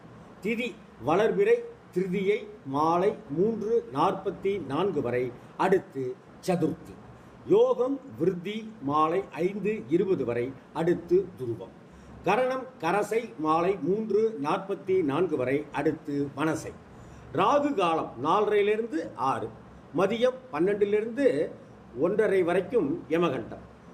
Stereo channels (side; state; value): both; identical; correlation 1.00